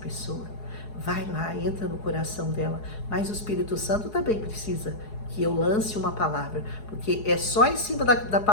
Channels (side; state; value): right; late; 4.7 ms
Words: Vai lá, entra no coração dela. Mas o Espírito Santo também precisa que eu lance uma palavra, porque é só em cima da